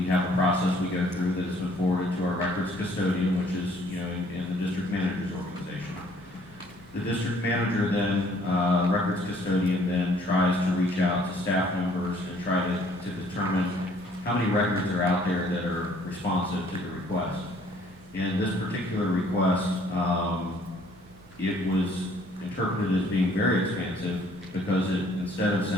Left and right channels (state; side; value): noise; right; hum, 28 dB below the sound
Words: have a process we go through that has been forwarded to our records custodian, which is, in the district manager's organization. The district manager then, records custodian then tries to reach out to staff members and try to determine how many records are out there that are responsive to the request. In this particular request, it was interpreted as being very expansive because it, instead of